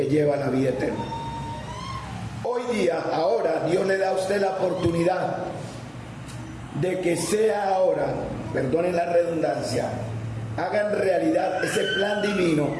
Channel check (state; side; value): identical; both; correlation 1.00